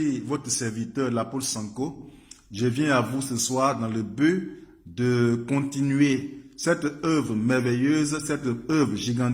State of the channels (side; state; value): both; identical; correlation 1.00